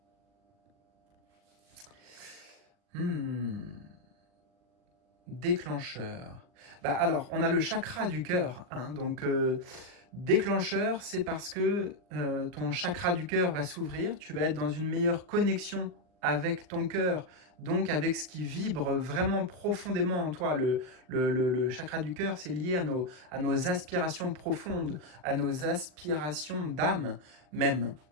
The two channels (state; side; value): late; left; 39 ms